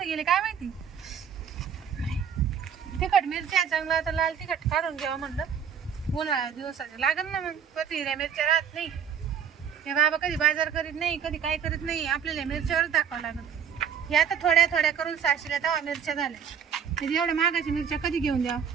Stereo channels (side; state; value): left; quieter; 7.7 dB